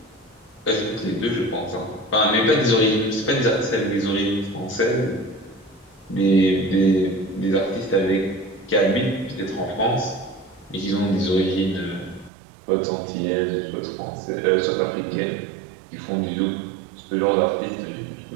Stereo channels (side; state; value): left; drops out; at 12.3 s